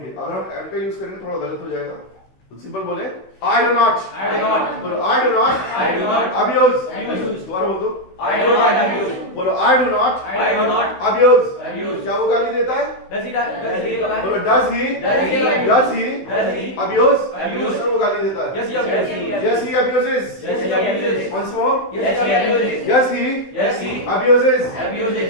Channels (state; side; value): late; right; 16 ms